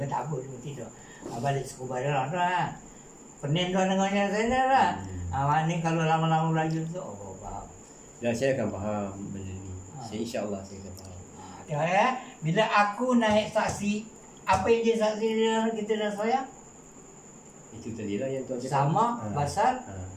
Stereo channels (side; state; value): both; identical; correlation 1.00